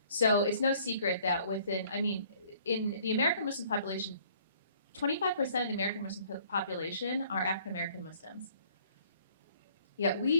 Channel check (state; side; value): inverted; both; correlation -0.59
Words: So it's no secret that in the American Muslim population, 25% of the American Muslim population are African American Muslims. Yet